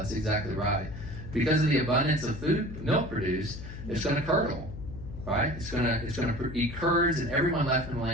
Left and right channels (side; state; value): left; noise; hum, 11 dB below the sound